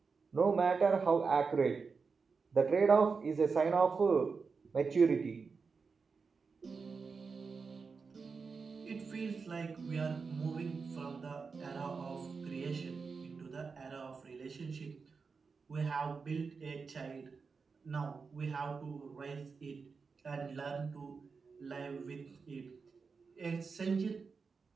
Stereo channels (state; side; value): quieter; left; 5.0 dB